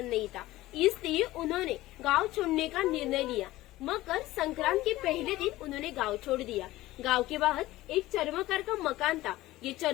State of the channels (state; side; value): quieter; right; 17.1 dB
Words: नहीं था, इसलिए उन्होंने गांव छोड़ने का निर्णय लिया। मकर संक्रांत के पहले दिन उन्होंने गांव छोड़ दिया। गांव के बाहर एक चर्मकार का मकान था। ये